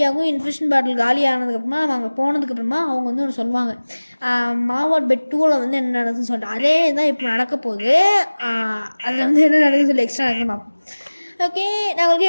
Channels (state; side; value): inverted; both; correlation -1.00